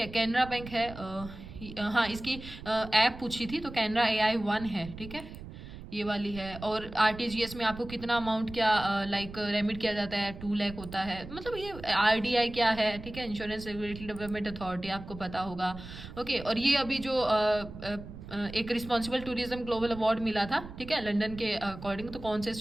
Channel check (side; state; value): right; noise; rumble, 13 dB below the sound